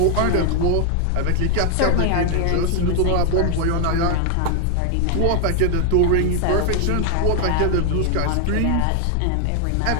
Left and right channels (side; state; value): both; different; correlation 0.00